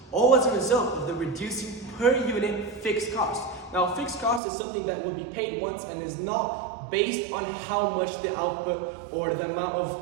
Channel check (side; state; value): left; drops out; at 4.4 s